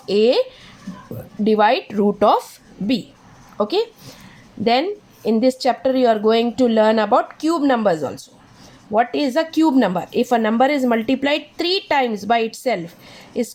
a divide root of b. Okay. Then in this chapter you are going to learn about cube numbers also. What is a cube number? If a number is multiplied 3 times by itself, is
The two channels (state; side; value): identical; both; correlation 1.00